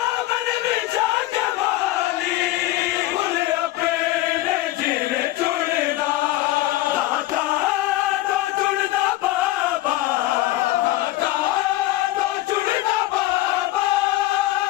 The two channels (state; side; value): quieter; right; 16.8 dB